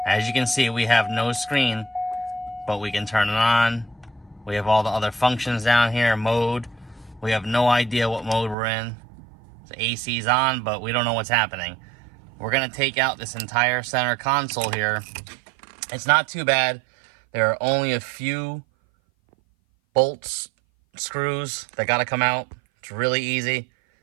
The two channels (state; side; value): drops out; left; at 8.6 s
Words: As you can see, we have no screen, but we can turn it on. We have all the other functions down here, mode. We have no idea what mode we're in. The AC's on, but we don't know what's happening. We're gonna take out this entire center console here. It's not too bad. There are only a few bolts, screws that gotta come out. It's really easy.